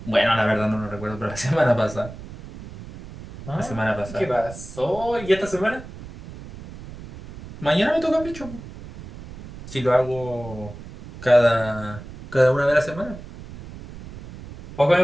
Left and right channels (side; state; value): right; noise; rumble, 15 dB below the sound